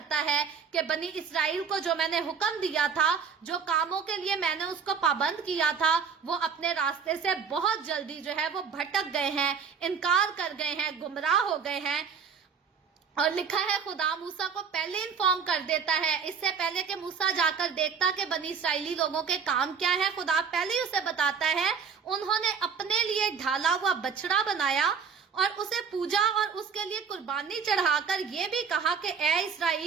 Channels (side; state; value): left; quieter; 6.2 dB